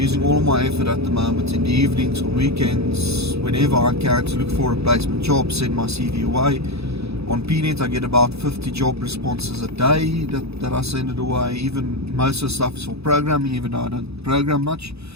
all of my effort at the moment in the evenings or weekends, whenever I can, to look for a replacement job, send my CV away. On PNet I get about 50 job responses a day that I send it away. Even most of the stuff is for programming, even though I don't program much.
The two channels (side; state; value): left; late; 0.79 ms